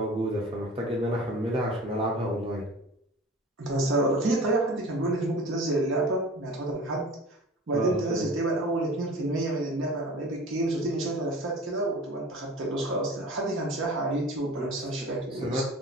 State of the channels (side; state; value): both; normal; correlation 0.40